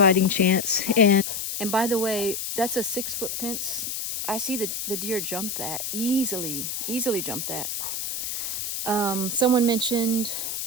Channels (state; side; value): noise; left; hiss, 4 dB below the sound